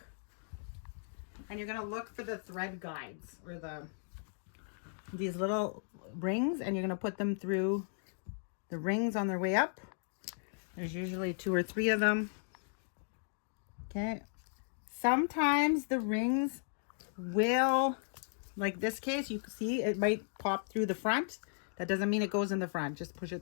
and you're going to look for the thread guides, or these little rings, and you're going to put them through the rings on their way up. There's usually 2 or 3 of them. Okay. Sometimes the rings will, like this case, you can see it might pop through the front. That doesn't mean it goes in the front. Just push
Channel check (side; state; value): right; silent; digital silence